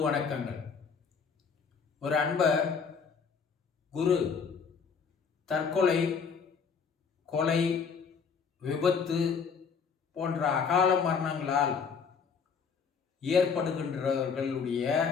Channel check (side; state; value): right; quieter; 6.0 dB